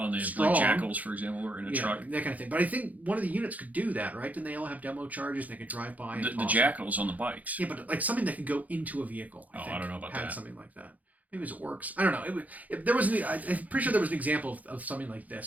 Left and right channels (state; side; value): late; left; 0.077 ms